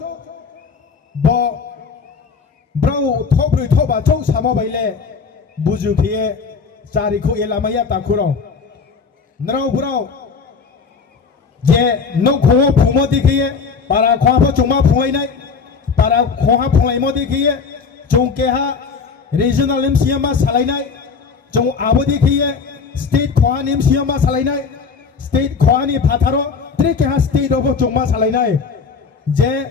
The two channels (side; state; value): right; quieter; 5.3 dB